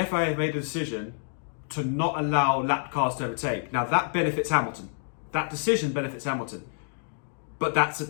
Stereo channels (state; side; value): silent; right; digital silence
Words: FIA have made a decision to not allow lap cars to overtake. Now that benefits Hamilton. That decision benefits Hamilton. But that's